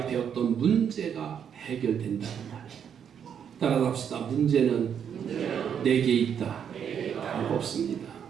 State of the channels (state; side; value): quieter; left; 8.1 dB